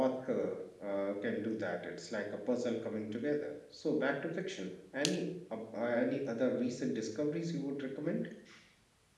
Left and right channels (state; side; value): identical; both; correlation 1.00